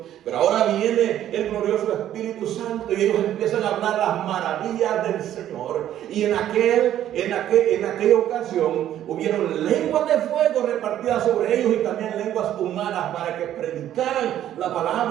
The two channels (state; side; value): quieter; left; 11.6 dB